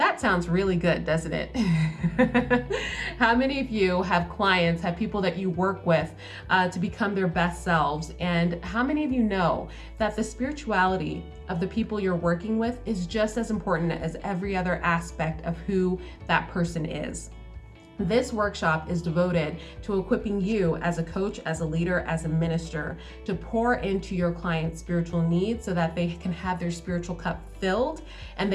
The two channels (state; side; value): identical; both; correlation 1.00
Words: sounds really good, doesn't it? How many of you have clients, have people that you work with to become their best selves? And how many of you know that the spirituality of the people you're working with is just as important as every other aspect of who that person is? This workshop is devoted to equipping you as a coach, as a leader, as a minister to pour into your client's spiritual needs so that they can have their spiritual cup filled and